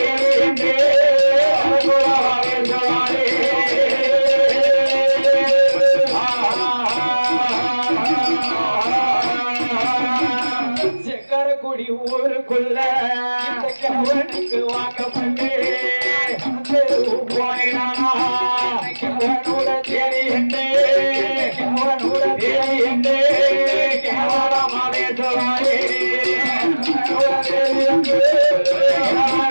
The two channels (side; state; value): both; inverted; correlation -1.00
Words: என்று பேசுவாரே. செக்காரக்குடி ஊருக்குள்ள கவனுக்கு வாக்கப்பட்டு போனானா கவனோட தேடி என்று கவனோட தேடி என்று கேவலமாவே சொல்வாரே,